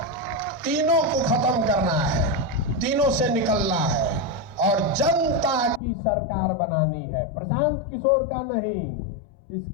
तीनों को खत्म करना है, तीनों से निकलना है और जनता की सरकार बनानी है, प्रशांत किशोर का नहीं।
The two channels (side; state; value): right; drops out; at 5.8 s